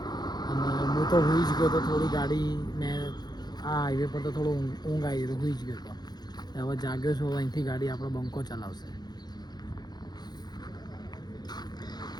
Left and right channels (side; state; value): right; late; 0.20 ms